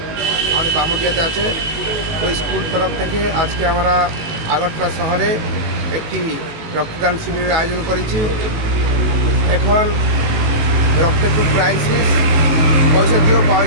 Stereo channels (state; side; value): late; left; 19 ms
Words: আমাদের বামুটিয়াতে আছে। ওই স্কুল তরফ থেকে আজকে আমরা আগরতলা শহরে একটি রক্তদান শিবিরের আয়োজন করেছি। এখন রক্তের খুব ক্রাইসিস, পয়সা দিয়েও পাওয়া